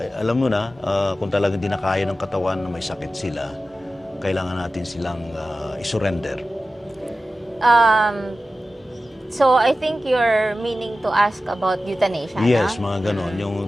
alam mo na, kung talagang di na kaya ng katawan na may sakit sila, kailangan natin silang isurrender. So, I think you're meaning to ask about euthanasia, Yes, no? mga ganon. Yung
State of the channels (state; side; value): normal; both; correlation 0.94